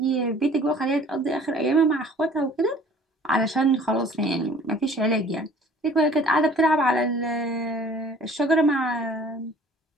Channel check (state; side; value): normal; both; correlation 0.51